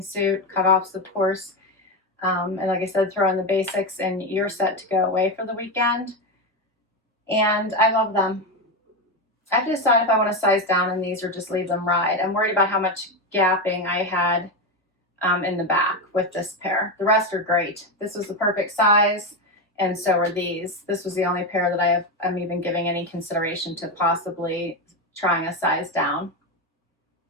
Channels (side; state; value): both; normal; correlation 0.13